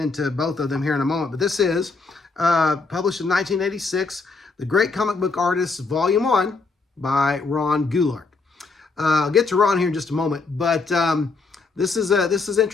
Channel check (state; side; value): quieter; right; 4.1 dB